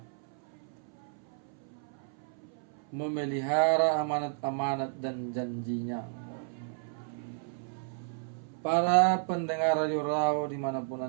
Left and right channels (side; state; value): left; silent; 56 dB below the other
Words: memelihara amanat-amanat dan janjinya. Para pendengar Radio Raw dimanapun